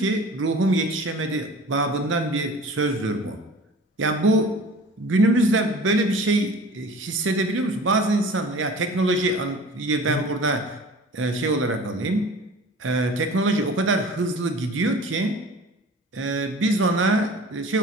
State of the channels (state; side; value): normal; both; correlation 0.42